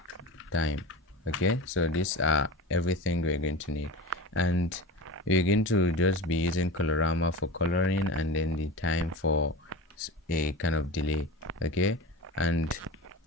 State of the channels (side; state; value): both; normal; correlation 0.28